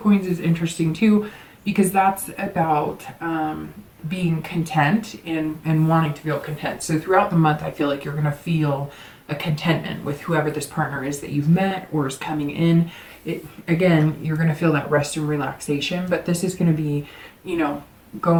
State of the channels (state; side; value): identical; both; correlation 1.00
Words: is interesting too, because that's about being content and wanting to feel content. So throughout the month, I feel like you're going to feel a contentment with whoever this partner is that you've met or is coming in. Again, you're going to feel that rest and relaxation, but this is going to be,